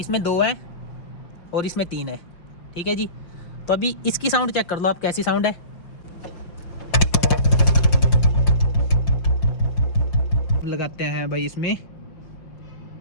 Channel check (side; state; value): right; late; 5.7 ms